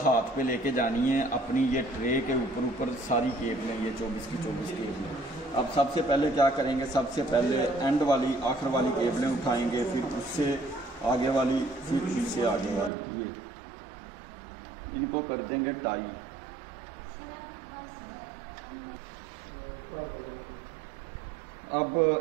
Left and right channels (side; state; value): left; drops out; at 12.9 s